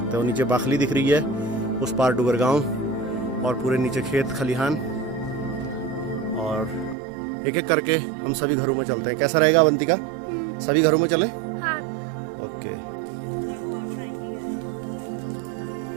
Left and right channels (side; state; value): left; drops out; at 7.0 s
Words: हो। नीचे बाखली दिख रही है, उस पार डुगर गांव, और पूरे नीचे खेत खलिहान। और एक एक करके हम सभी घरों में चलते हैं। कैसा रहेगा अवंतिका? सभी घरों में चलें? हाँ। ओके।